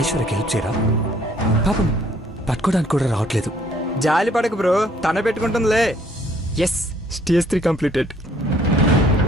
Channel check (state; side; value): normal; both; correlation 0.62